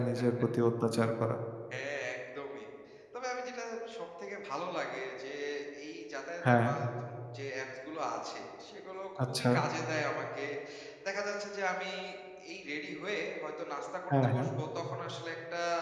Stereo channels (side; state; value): both; identical; correlation 1.00